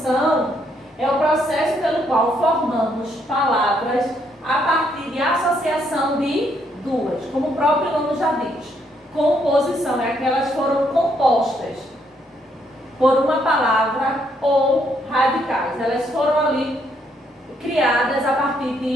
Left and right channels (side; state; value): both; normal; correlation 0.73